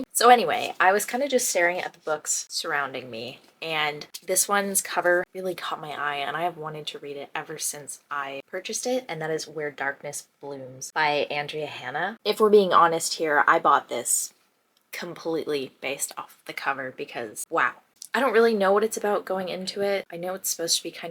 So anyway, I was kind of just staring at the books surrounding me, and this one's cover really caught my eye, and I have wanted to read it ever since I purchased it, and that is Where Darkness Blooms by Andrea Hanna. If we're being honest here, I bought this completely based off the cover because, wow. I don't really know what it's about going into it. I know it's supposed to be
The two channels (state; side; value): identical; both; correlation 1.00